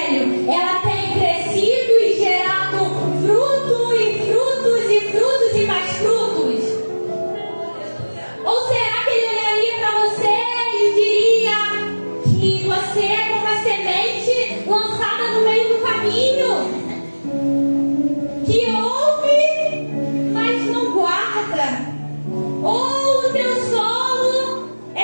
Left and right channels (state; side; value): inverted; both; correlation -1.00